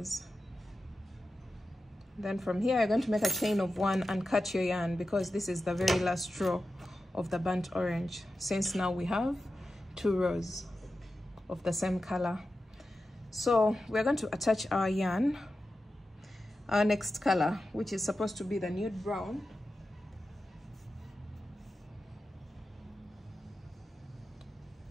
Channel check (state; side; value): normal; both; correlation 0.92